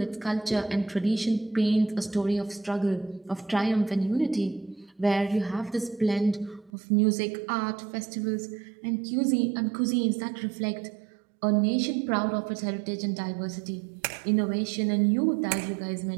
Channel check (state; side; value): drops out; left; at 6.7 s